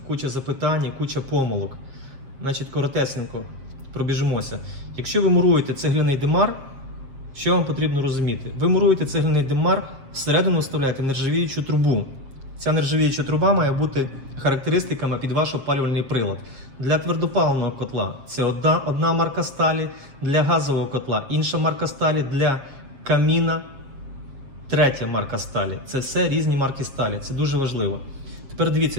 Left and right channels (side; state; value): left; late; 7.5 ms